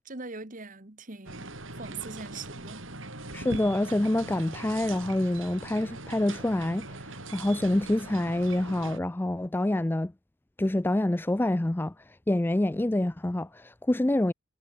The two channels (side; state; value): both; normal; correlation 0.93